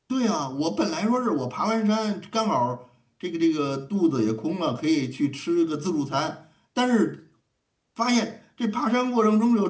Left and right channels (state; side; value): identical; both; correlation 1.00